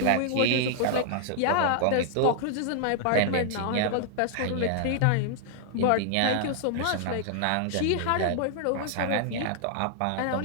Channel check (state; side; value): different; both; correlation -0.01